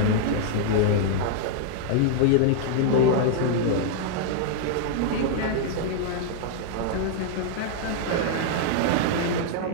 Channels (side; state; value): both; different; correlation -0.01